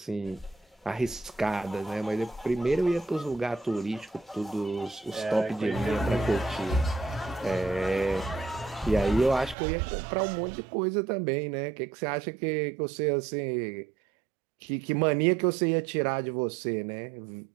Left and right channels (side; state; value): left; drops out; at 9.6 s